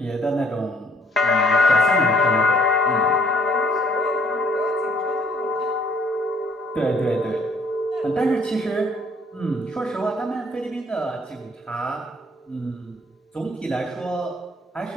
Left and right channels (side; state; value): both; normal; correlation 0.62